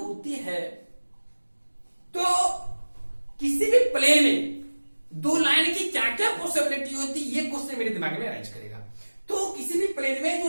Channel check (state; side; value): inverted; both; correlation -1.00